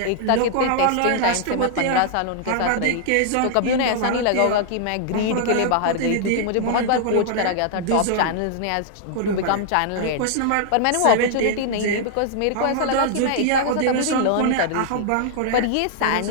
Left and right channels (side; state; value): both; different; correlation -0.01